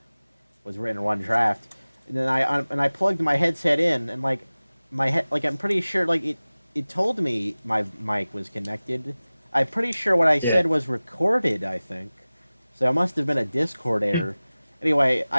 was written in one draft, and then I plugged my headset in, and like I'm pretty sure it told me my mic was connected. I'm pretty sure what I said was recorded. I think so. It must have been a Discord error. Anyway,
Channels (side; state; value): both; inverted; correlation -0.98